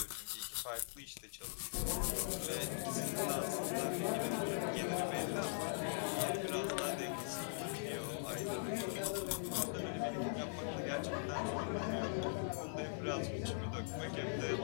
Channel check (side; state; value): right; silent; digital silence